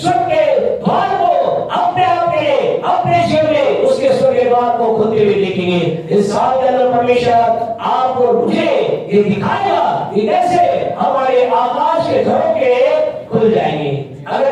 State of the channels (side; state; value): both; identical; correlation 1.00